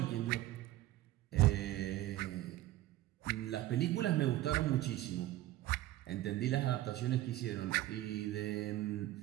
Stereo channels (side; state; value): left; quieter; 15.4 dB